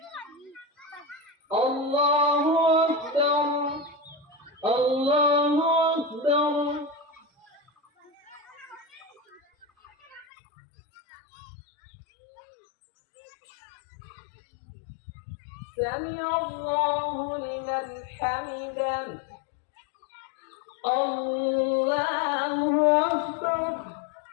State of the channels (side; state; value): right; drops out; at 10.2 s